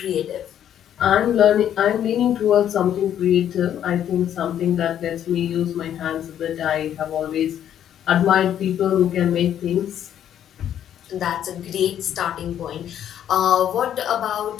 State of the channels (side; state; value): right; quieter; 10.3 dB